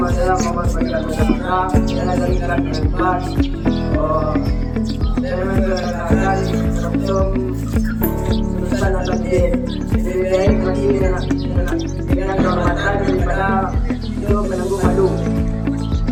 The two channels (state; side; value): identical; both; correlation 1.00